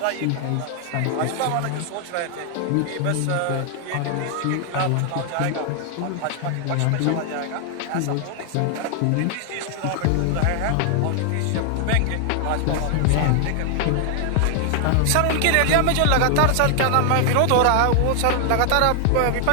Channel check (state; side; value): different; both; correlation 0.00